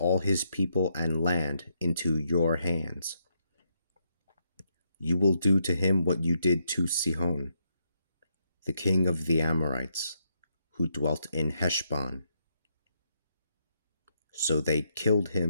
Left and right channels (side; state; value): both; inverted; correlation -0.78